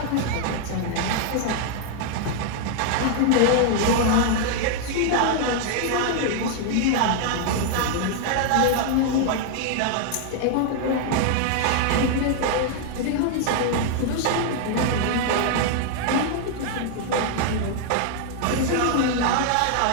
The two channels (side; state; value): both; different; correlation 0.00